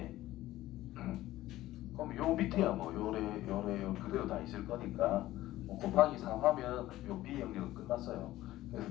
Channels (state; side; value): quieter; right; 15.6 dB